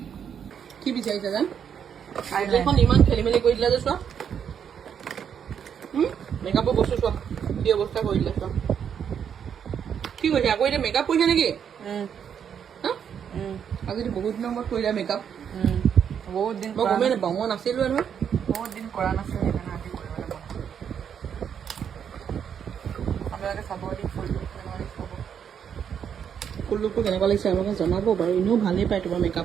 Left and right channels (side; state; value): left; quieter; 8.0 dB